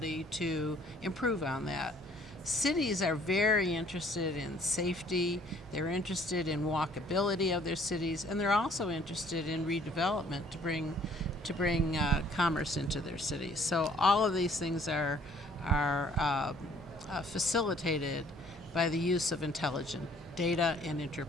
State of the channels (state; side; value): normal; both; correlation 0.59